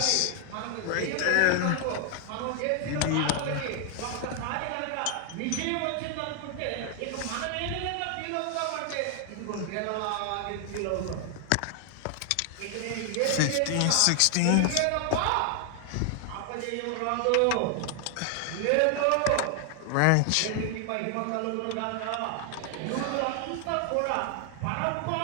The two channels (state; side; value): different; both; correlation 0.00